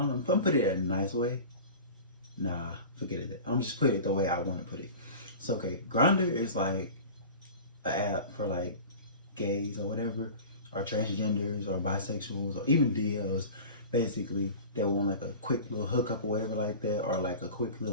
gonna put it in a nice way. Nah, forget it. I'm just put it the way I want to put it. So okay, Grindr is like an app for like gays or whatever, or transgenders or bisexuals or even DLs, basically that want like a quick little hookup or whatever like that, or like a quick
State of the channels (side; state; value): both; inverted; correlation -0.36